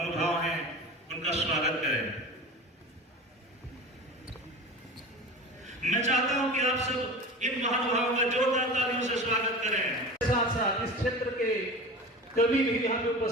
हैं उनका स्वागत करें। मैं चाहता हूं कि आप सब इन महानुभावों का जोरदार तालियों से स्वागत करें। साथ साथ इस क्षेत्र के कवि भी यहाँ पे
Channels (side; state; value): both; normal; correlation 0.33